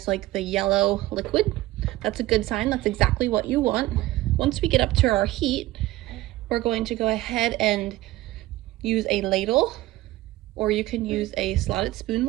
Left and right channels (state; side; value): quieter; left; 17.1 dB